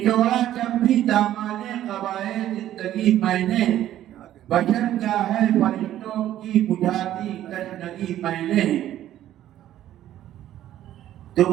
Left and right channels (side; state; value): left; quieter; 12.5 dB